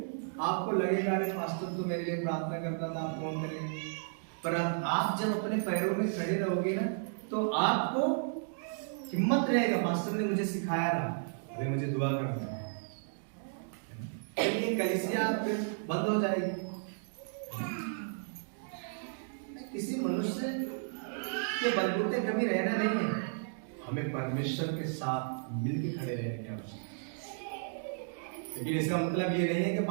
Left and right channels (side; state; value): left; silent; digital silence